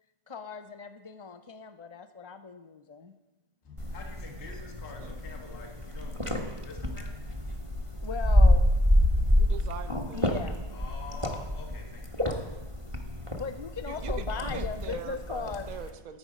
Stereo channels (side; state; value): left; late; 1.5 ms